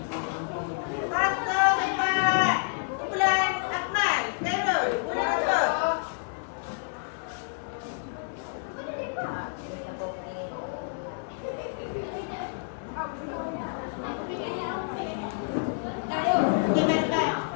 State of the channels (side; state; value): right; silent; digital silence